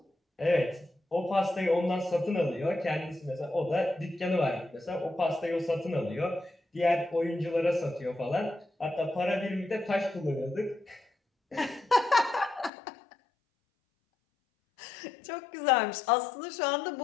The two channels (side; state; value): right; drops out; at 12.7 s